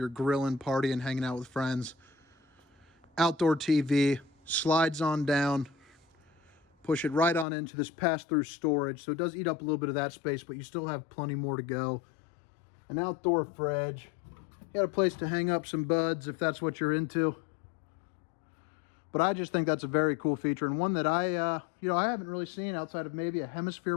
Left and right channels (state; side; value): drops out; right; at 7.5 s